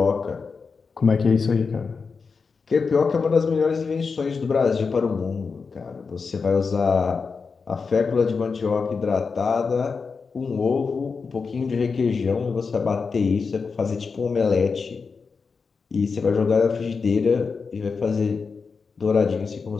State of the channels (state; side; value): quieter; right; 5.0 dB